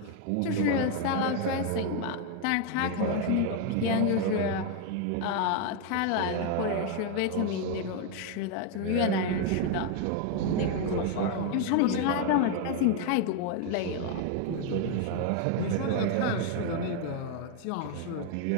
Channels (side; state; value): both; different; correlation 0.01